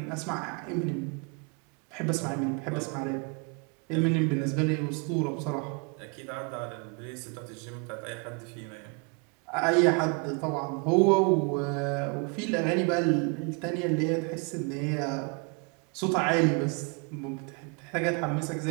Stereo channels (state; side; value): quieter; left; 34.0 dB